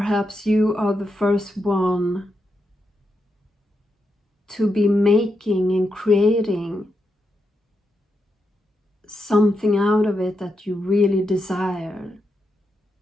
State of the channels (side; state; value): both; normal; correlation 0.85